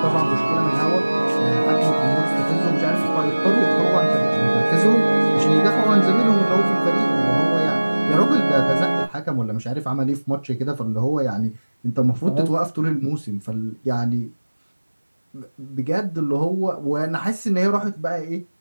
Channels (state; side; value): inverted; both; correlation -1.00